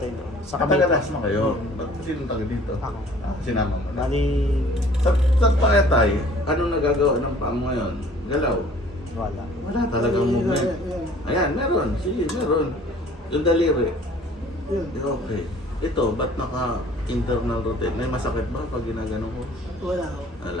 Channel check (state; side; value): normal; both; correlation 0.52